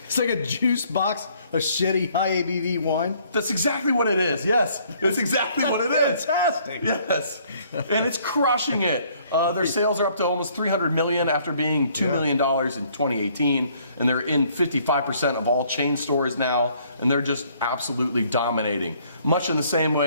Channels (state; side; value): inverted; both; correlation -0.63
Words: It's like a juice box of shitty high ABV wine. That's exactly what it is. Yes, that's exactly what it is. Fantastic. Yes, and it's crushing it. Their sales are up to almost $300 million after being $2 million in 2018, and they're in 55% of all chain stores now, and they're just absolutely dominating. Much in the same